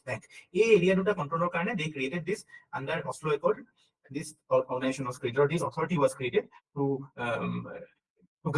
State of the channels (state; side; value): identical; both; correlation 1.00